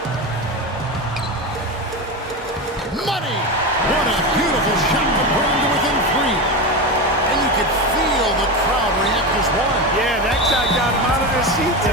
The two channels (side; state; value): both; normal; correlation 0.19